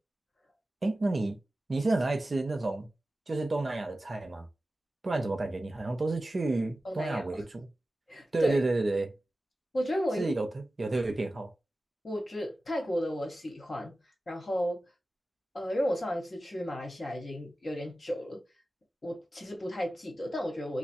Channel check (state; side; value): normal; both; correlation 0.95